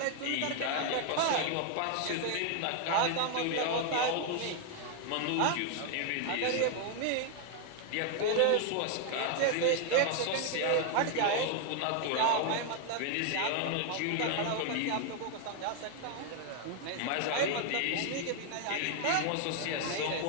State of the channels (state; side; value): different; both; correlation 0.00